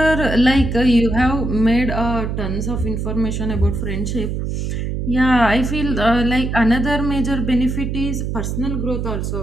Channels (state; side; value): noise; right; hum, 2 dB below the sound